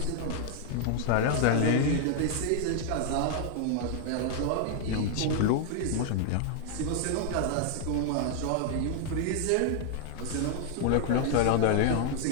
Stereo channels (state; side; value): different; both; correlation 0.00